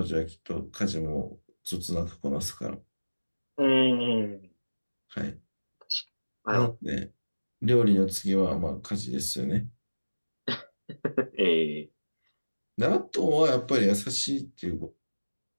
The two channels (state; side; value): inverted; both; correlation -1.00